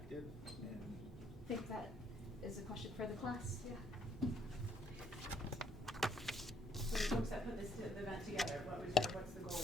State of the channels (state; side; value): normal; both; correlation 0.68